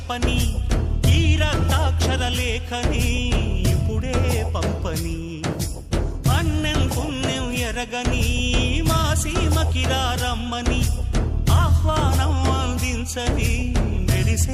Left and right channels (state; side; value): identical; both; correlation 1.00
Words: ఈ రక్తాక్షర లేఖని ఇప్పుడే పంపని అన్నం పుణ్యం ఎరగని మా సీమకిరా రమ్మని ఆహ్వానం అందించని